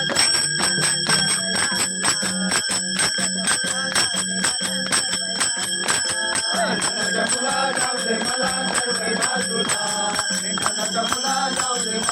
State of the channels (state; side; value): identical; both; correlation 1.00